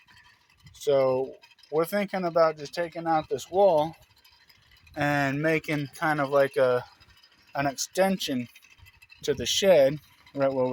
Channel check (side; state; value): both; identical; correlation 1.00